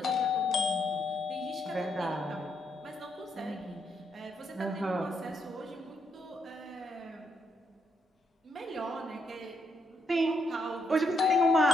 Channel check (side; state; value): both; normal; correlation 0.77